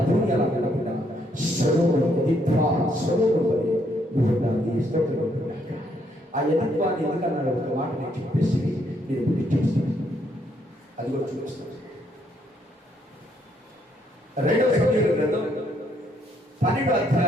ఎలా ఉండకుండా స్వరూపడి నువ్వు దాన్ని ఇష్టపడుతున్నాక ఆ ఎదుర్వాన్ని ఎందుకన్నాడు ఒక మాట నేను చెప్పేసి నేను బుద్ధి చూస్తాను. అది కూడా చూపిస్తాను. 2 సమూయేలు గ్రంథం 12వ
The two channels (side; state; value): both; normal; correlation 0.72